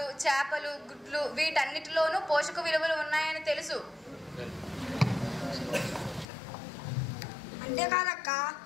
చేపలు, గుడ్లు వీటన్నిటిలోనూ పోషక విలువలు ఉన్నాయని తెలుసు. అంతేకాదక్క,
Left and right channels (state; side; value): drops out; right; at 6.2 s